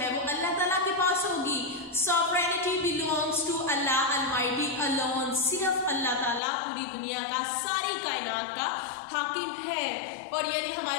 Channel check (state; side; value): drops out; right; at 6.4 s